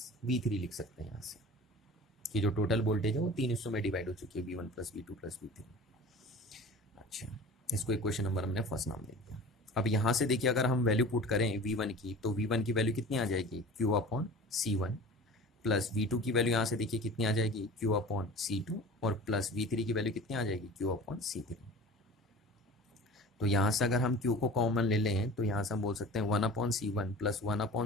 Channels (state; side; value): normal; both; correlation 0.39